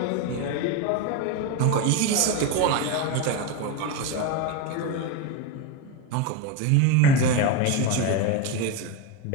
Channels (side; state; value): both; different; correlation 0.04